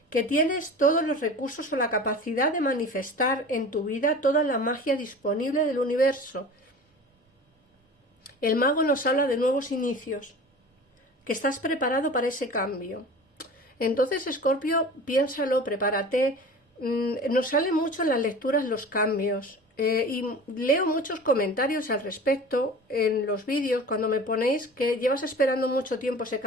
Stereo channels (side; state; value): both; normal; correlation 0.38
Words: que tienes todos los recursos o la capacidad de manifestar en tu vida toda la magia disponible del universo. El mago nos habla de nuevos inicios, que estás preparado para ese cambio. Entonces, Escorpio, piénsalo, prepárate. Nos salen mucho en las lecturas los cambios y leo muchos comentarios al respecto en los vídeos cuando me ponéis que llevas esperando mucho tiempo ese